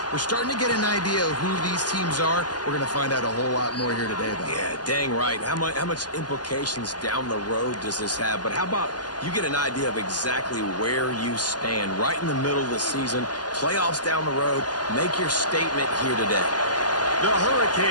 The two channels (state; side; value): late; right; 0.70 ms